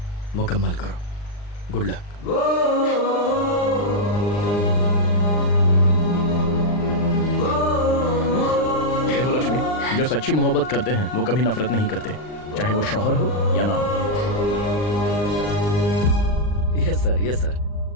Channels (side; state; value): right; late; 39 ms